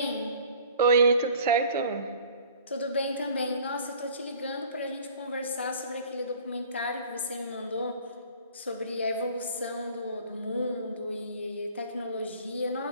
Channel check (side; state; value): both; inverted; correlation -0.49